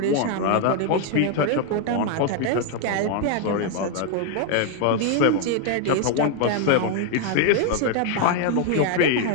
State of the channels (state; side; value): different; both; correlation 0.00